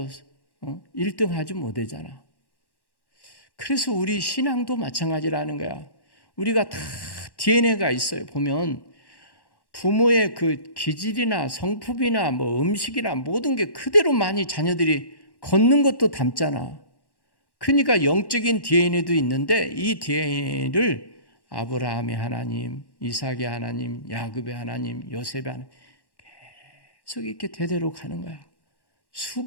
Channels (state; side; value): late; right; 1.1 ms